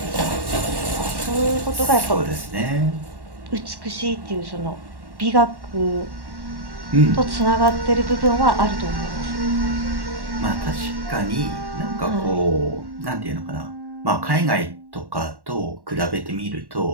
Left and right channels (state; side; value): late; left; 1.1 ms